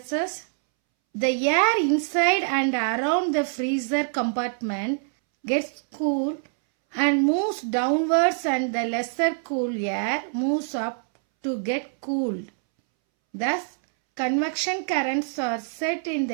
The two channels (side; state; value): left; silent; 62 dB below the other